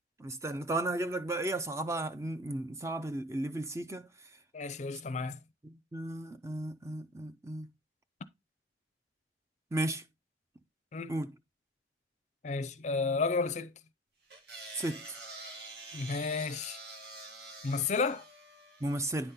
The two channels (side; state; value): both; normal; correlation 0.40